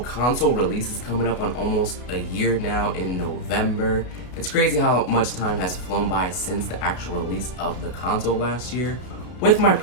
release is coming up on almost a year now in November. It's crazy how much time has flown by since the actual release of the console last year. With my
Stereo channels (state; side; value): late; right; 33 ms